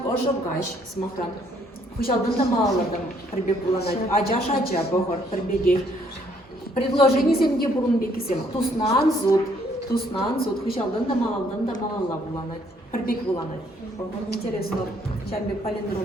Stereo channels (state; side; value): normal; both; correlation 0.66